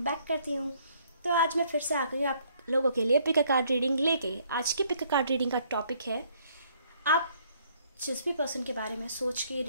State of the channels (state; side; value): inverted; both; correlation -0.65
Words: बैक करती हूँ। तो आज मैं फिर से आ गई आप लोगों के लिए पिक अ कार्ड रीडिंग लेके। आज की पिक अ कार्ड रीडिंग का टॉपिक है, आप जिस भी पर्सन के बारे में सोच के